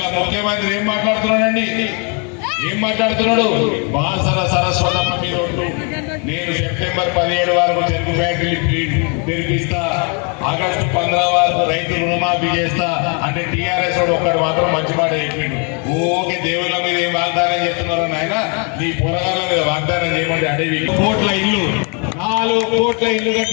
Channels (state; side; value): quieter; right; 36.4 dB